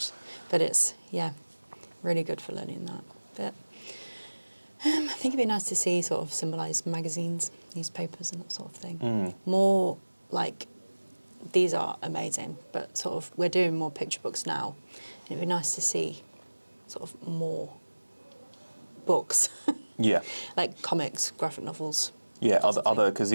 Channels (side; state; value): both; inverted; correlation -1.00